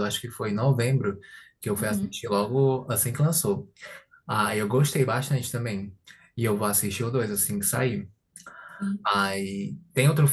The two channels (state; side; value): identical; both; correlation 1.00